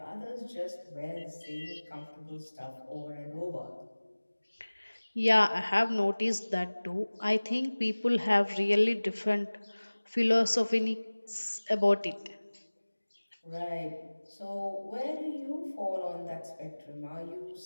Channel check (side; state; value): both; inverted; correlation -1.00